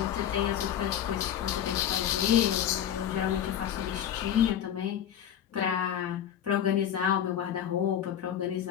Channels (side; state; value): right; quieter; 9.9 dB